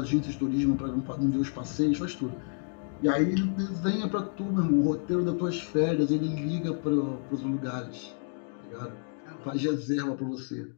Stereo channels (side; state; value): right; silent; 58 dB below the other